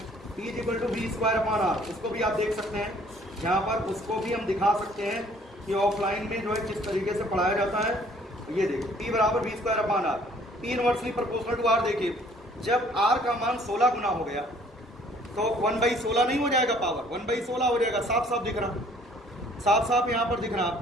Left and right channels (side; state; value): both; normal; correlation 0.58